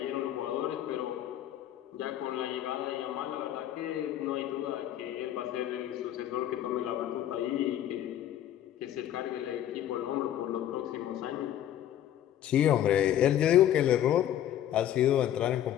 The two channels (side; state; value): right; quieter; 11.5 dB